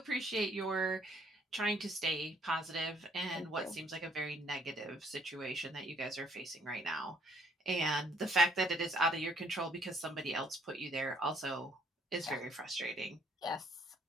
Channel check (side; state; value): both; normal; correlation 0.64